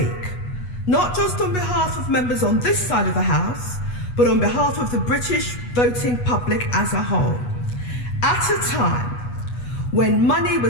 not just on behalf of members on this side of the House, but on behalf of the British voting public as a whole. At a time when money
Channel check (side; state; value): right; late; 8.2 ms